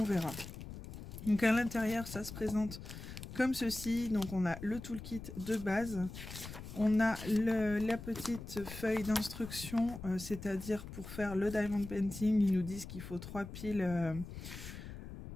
verra. Donc à l'intérieur, ça se présente comme ceci. Donc on a le toolkit de base. On a la petite feuille d'instruction, c'est-à-dire pour faire le diamond painting, ils nous disent qu'il faut 3 piles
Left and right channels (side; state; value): left; noise; rumble, 11 dB below the sound